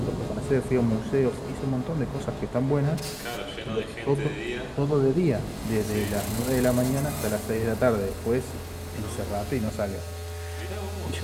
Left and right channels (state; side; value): identical; both; correlation 1.00